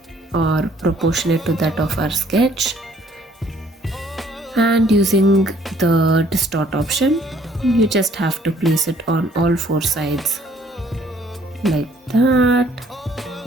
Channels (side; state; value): both; normal; correlation 0.61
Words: or proportionate to that of our sketch. And using the distort option, you just have to place it on all 4 sides like that